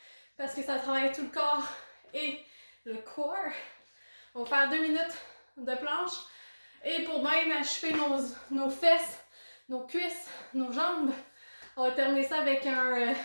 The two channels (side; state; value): both; inverted; correlation -1.00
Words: parce que ça travaille tout le corps et le corps. On va faire 2 minutes de planche. Et pour bien achever nos fesses, nos cuisses, nos jambes, on va terminer ça avec un